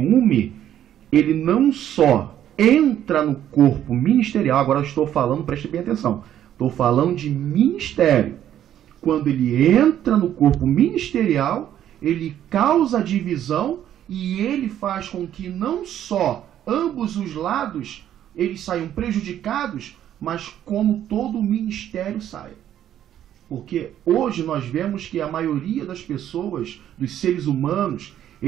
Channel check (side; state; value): left; quieter; 11.0 dB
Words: ele não só entra no corpo ministerial, agora eu estou falando, preste bem atenção, estou falando de ministério. Quando ele entra no corpo ministerial, ele causa divisão e ele faz com que não só ambos os lados eles saiam prejudicados, mas como todo o ministério saia. Porque hoje nós vemos que a maioria das pessoas, dos seres humanos,